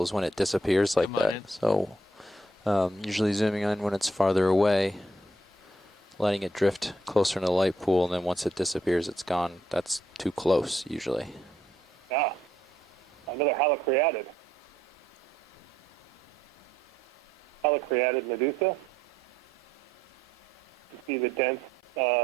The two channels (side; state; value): both; normal; correlation 0.72